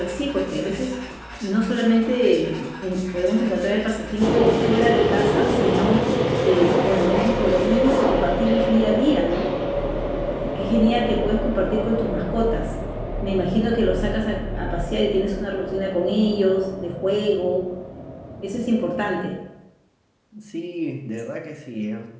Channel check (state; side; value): identical; both; correlation 1.00